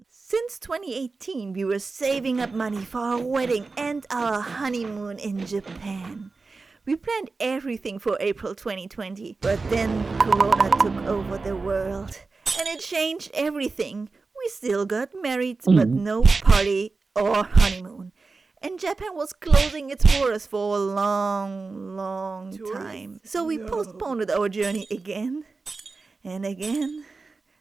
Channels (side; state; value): left; quieter; 4.0 dB